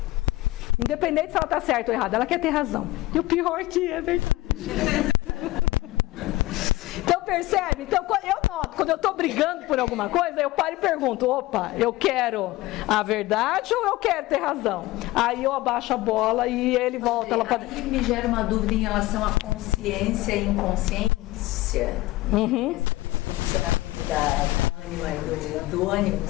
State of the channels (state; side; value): quieter; right; 18.3 dB